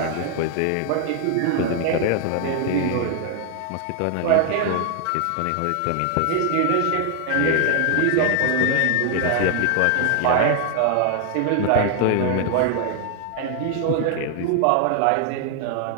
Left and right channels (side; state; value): both; different; correlation 0.00